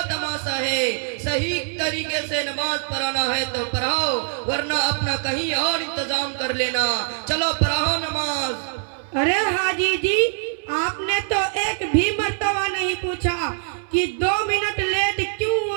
تماشا ہے؟ صحیح طریقے سے نماز پڑھانا ہے تو پڑھاؤ، ورنہ اپنا کہیں اور انتظام کر لینا۔ چلو پڑھاؤ نماز۔ ارے حاجی جی آپ نے تو ایک بھی مرتبہ نہیں پوچھا کہ 2 منٹ لیٹ کیوں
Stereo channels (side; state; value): left; silent; digital silence